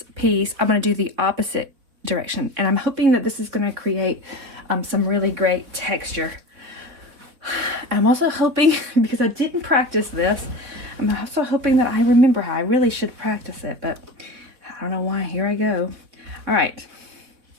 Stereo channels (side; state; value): left; late; 4.3 ms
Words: piece, I'm gonna do the opposite direction. And I'm hoping that this is gonna create some really great texture. I'm also hoping, because I didn't practice this, I'm also hoping that I remember how. I really should practice it, but I don't know why. Here I go. All right.